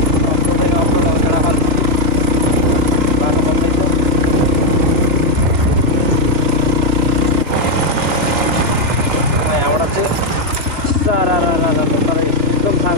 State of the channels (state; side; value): late; left; 2.6 ms